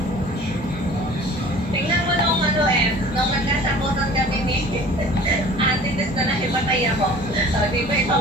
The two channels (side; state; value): both; normal; correlation 0.46